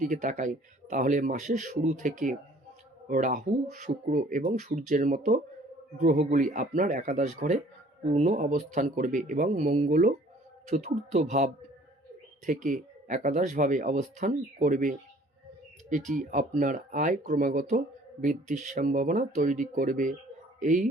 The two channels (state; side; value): normal; both; correlation 0.55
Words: তাকাই, তাহলে মাসের শুরু থেকে রাহু, শুক্র এবং সূর্যের মতো গ্রহগুলি আপনার একাদশ ঘরে পূর্ণ অবস্থান করবে এবং মঙ্গলও চতুর্থ ভাব থেকে একাদশভাবে অবস্থান করবে। এটি আপনার আয় ক্রমাগত বৃদ্ধির সম্ভাবনা তৈরি করবে। এই